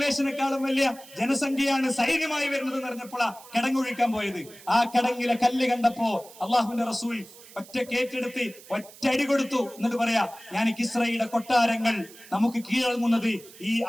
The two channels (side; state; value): right; noise; hiss, 20 dB below the sound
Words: വലിയ ജനസംഖ്യയാണ് സൈന്യമായി വരുന്നത് എന്ന് പറഞ്ഞപ്പോഴാ കിടങ്ങൊഴിക്കാൻ പോയത്. ആ കിടങ്ങിലെ കല്ല് കണ്ടപ്പോ അള്ളാഹുവിന്റെ റസൂൽ ഒറ്റക്കേറ്റെടുത്ത് ഒറ്റടി കൊടുത്തു എന്നിട്ട് പറയാ, ഞാൻ കിസ്രയുടെ കൊട്ടാരങ്ങൾ നമുക്ക് കീഴടങ്ങുന്നത് ഈ